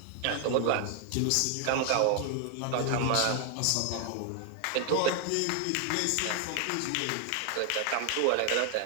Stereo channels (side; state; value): both; different; correlation 0.00